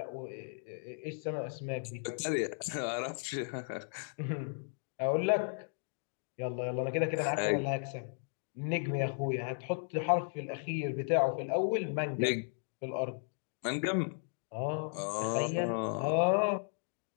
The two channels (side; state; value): right; silent; digital silence